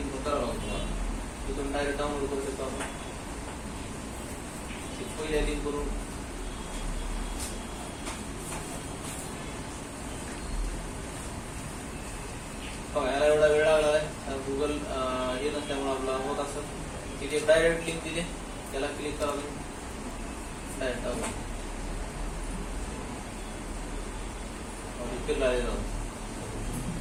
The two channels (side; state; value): both; identical; correlation 1.00